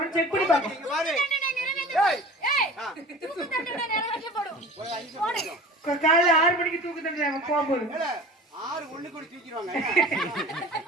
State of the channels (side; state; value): both; normal; correlation 0.39